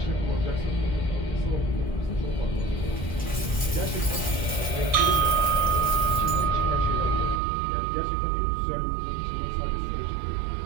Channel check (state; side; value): drops out; left; at 7.4 s